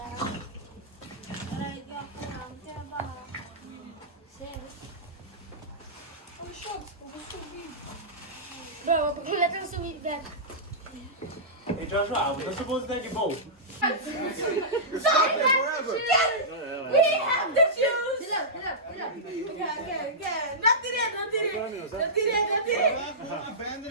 Bro, let us subir that. Hey Joshua, we're not supposed to take a boat. We have the shoes. Get up. Not today.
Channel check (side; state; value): both; normal; correlation -0.15